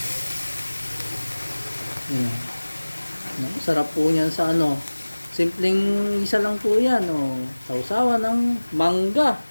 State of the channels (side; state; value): both; inverted; correlation -1.00